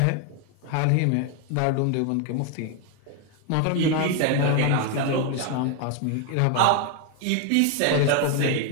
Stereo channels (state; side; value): different; both; correlation 0.01